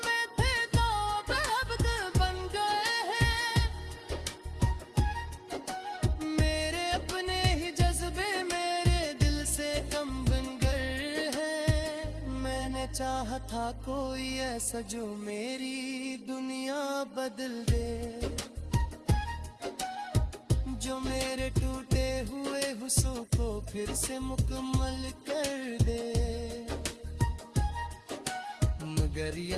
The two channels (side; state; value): both; identical; correlation 1.00